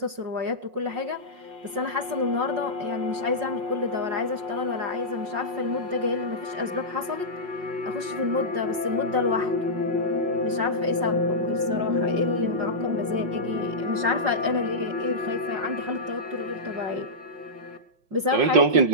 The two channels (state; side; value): late; left; 5.5 ms